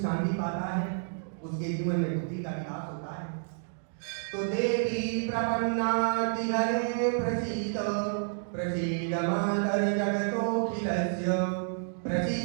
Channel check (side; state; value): left; silent; digital silence